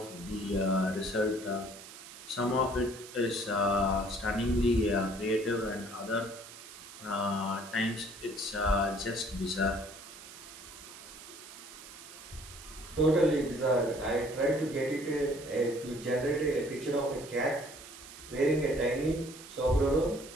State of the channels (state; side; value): noise; right; hiss, 15 dB below the sound